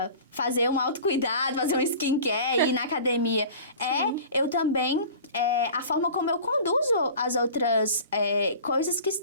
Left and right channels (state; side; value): inverted; both; correlation -0.40